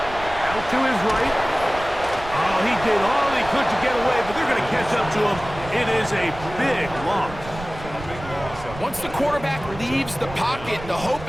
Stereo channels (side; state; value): right; noise; rumble, 13 dB below the sound